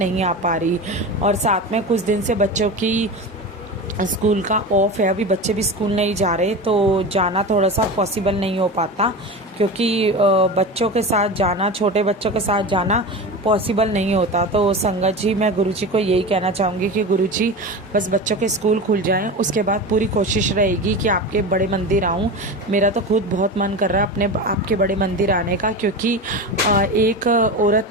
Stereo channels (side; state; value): both; normal; correlation 0.27